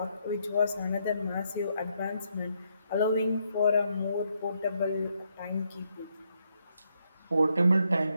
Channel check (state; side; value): inverted; both; correlation -0.76